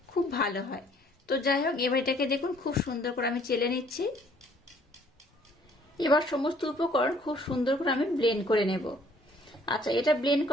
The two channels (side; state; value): both; normal; correlation 0.60